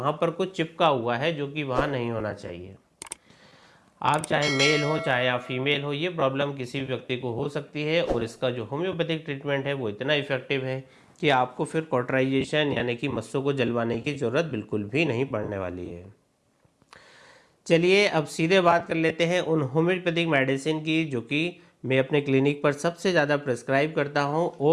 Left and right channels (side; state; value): both; identical; correlation 1.00